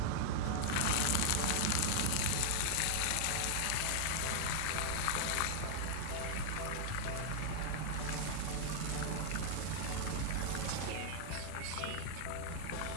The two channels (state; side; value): different; both; correlation -0.01